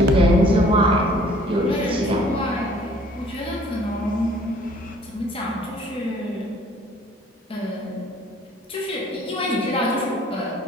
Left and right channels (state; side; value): normal; both; correlation 0.56